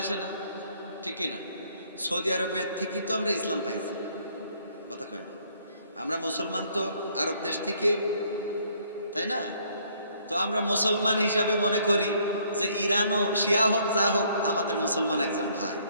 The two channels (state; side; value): inverted; both; correlation -0.64